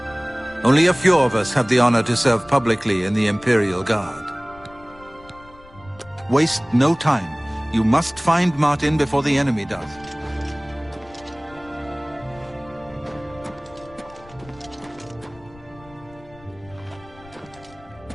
Only a few of us have the honor to serve publicly in the Imperial Guard. Waste no time. You must find Martin before the enemy does.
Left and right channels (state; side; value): noise; left; rumble, 23 dB below the sound